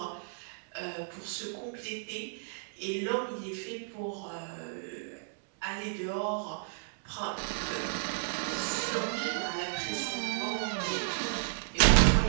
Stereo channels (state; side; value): silent; left; digital silence